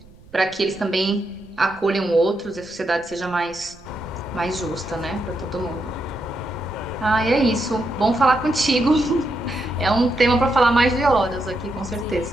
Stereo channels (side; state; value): right; noise; rumble, 24 dB below the sound